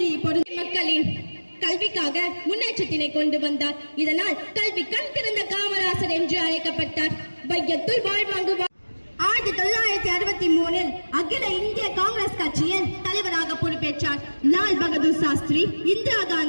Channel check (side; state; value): both; inverted; correlation -1.00